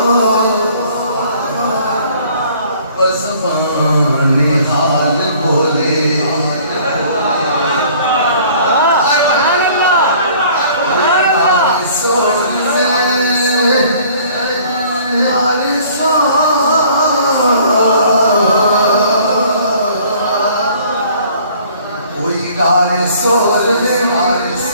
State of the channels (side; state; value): both; inverted; correlation -0.54